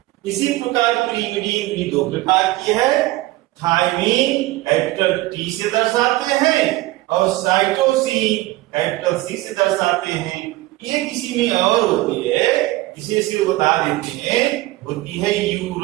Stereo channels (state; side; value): quieter; left; 18.5 dB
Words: इसी प्रकार पिरिमिडीन भी दो प्रकार की है, थायमिन कैपिटल टी से दर्शाते हैं और साइटोसिन कैपिटल सी से दर्शाते हैं। ये किसी में और होती है, इसे सिर्फ बता देते हैं, होती है